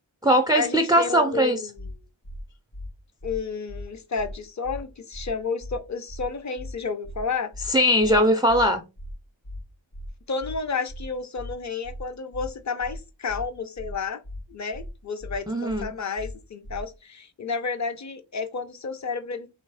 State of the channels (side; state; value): both; normal; correlation 0.13